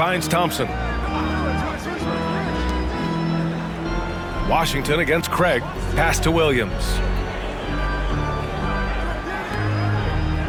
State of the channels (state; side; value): identical; both; correlation 1.00